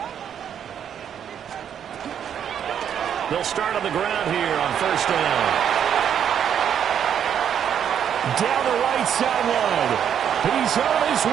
They'll start on the ground here on first down. Down the right sideline. He's on his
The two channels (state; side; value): quieter; left; 8.8 dB